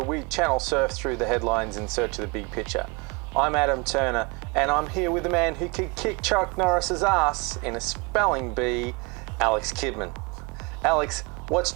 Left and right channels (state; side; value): quieter; left; 28.5 dB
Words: we channel surf through the headlines in search of the big picture. I'm Adam Turner, and I'm here with the man who could kick Chuck Norris's ass in a spelling bee, Alex Kidman. Alex, what's